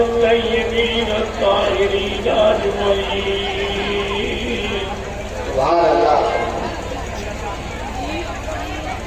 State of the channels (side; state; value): both; identical; correlation 1.00